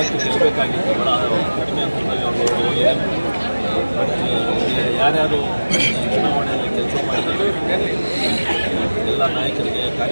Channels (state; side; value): inverted; both; correlation -1.00